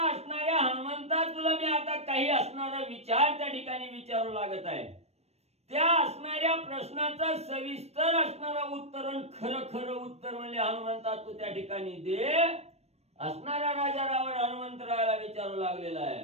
असणाऱ्या हनुमंता तुला मी आता काही असणारा विचार त्या ठिकाणी विचारू लागत आहे. त्या असणाऱ्या प्रश्नाचं सविस्तर असणारा उत्तर, खरं खरं उत्तर म्हणजे हनुमंता तू त्या ठिकाणी दे असणारा राजा रावण हनुमंतरायाला विचारू लागलेला आहे.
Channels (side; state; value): left; late; 0.31 ms